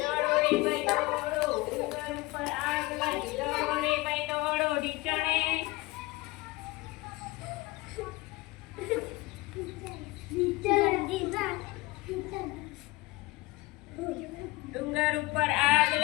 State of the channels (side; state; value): right; quieter; 21.6 dB